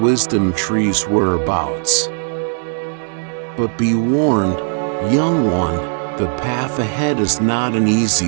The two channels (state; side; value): silent; left; digital silence